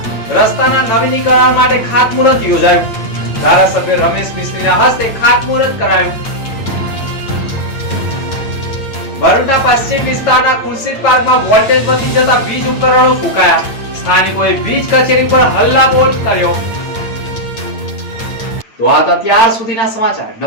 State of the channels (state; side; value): late; right; 8.9 ms